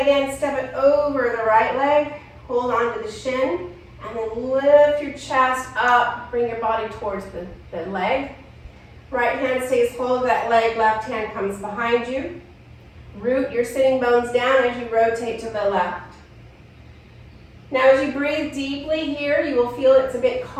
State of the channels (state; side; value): identical; both; correlation 1.00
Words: in, step it over the right leg. Hold on to the shin. And then lift your chest up, bring your body towards the leg. Right hand stays hold of that leg, left hand comes behind you. Root your sitting bones down as you rotate to the left. Now as you breathe deeply here, you will feel it's a bit